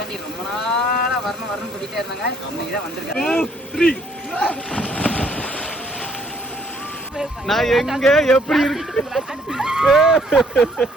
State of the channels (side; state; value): both; normal; correlation 0.64